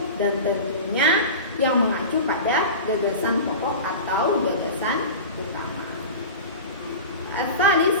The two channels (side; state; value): both; inverted; correlation -0.31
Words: dan tentunya yang mengacu pada gagasan pokok atau gagasan utama.